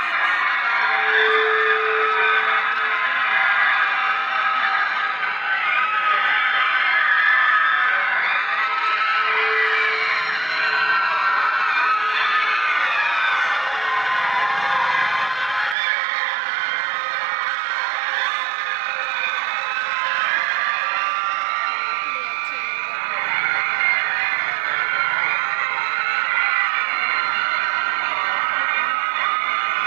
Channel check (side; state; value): left; drops out; at 15.8 s